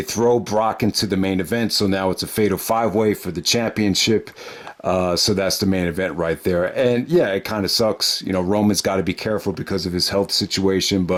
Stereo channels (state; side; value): identical; both; correlation 1.00